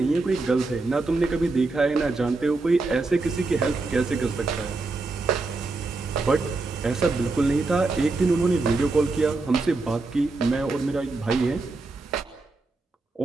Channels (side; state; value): left; quieter; 3.5 dB